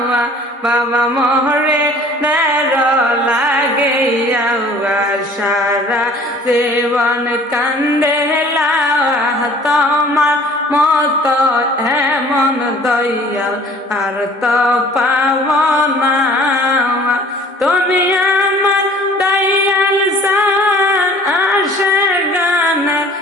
বাবা মোরে দের লাগিয়া সারা জীবন কান্দিলাম, তোমার মত এমন দয়াল আর তো পাব না। তুমি আমার দয়াল সার আসে গানের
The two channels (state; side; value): normal; both; correlation 0.50